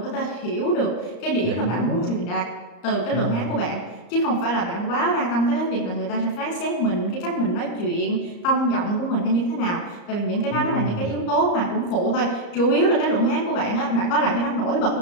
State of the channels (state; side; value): late; right; 34 ms